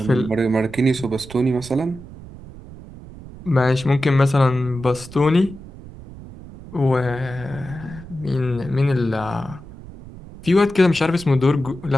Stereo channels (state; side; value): noise; right; rumble, 16 dB below the sound